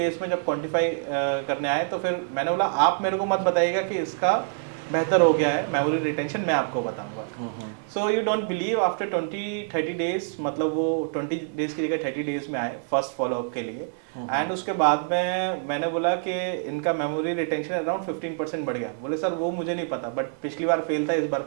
में जब क्वांटिफाई करने आए, तो फिर मैंने बोला आप मेरे को मत बताइएगा कि इसका बेहतर हो गया है मेमोरी रिटेंशन, मैं आपको बताऊंगा। So you don't believe, after 20-30 days, मतलब वो 20 डेज की जगह 30 डेज में आए फर्स्ट फॉलोअप के लिए। एंड उसके बाद में मैंने बोला कि इनका मेमोरी रिटेंशन अराउंड 15% बढ़ गया। बोले सर वो मुझे नहीं पता, बट पिछली बार फेल था, इस बार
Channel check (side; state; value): left; silent; digital silence